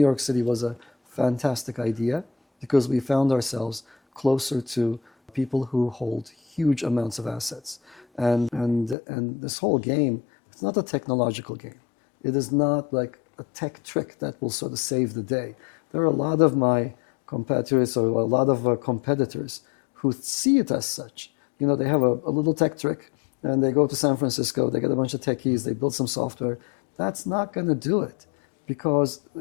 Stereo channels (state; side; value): drops out; right; at 9.0 s